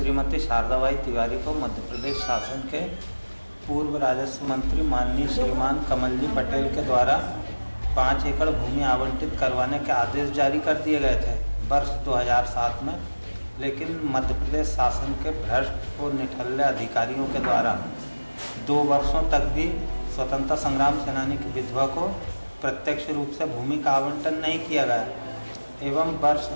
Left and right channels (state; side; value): inverted; both; correlation -1.00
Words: शारदाबाई तिवारी को मध्य प्रदेश शासन के पूर्व राजस्व मंत्री माननीय श्रीमान कमल जी पटेल के द्वारा 5 एकड़ भूमि आवंटित करवाने के आदेश जारी कर दिए गए थे वर्ष 2007 में। लेकिन मध्य प्रदेश शासन के भ्रष्ट और निठल्ले अधिकारियों के द्वारा 2 वर्षों तक भी स्वतंत्रता संग्राम सेनानी की विधवा को प्रत्यक्ष रूप से भूमि का आवंटन नहीं किया गया एवं वर्ष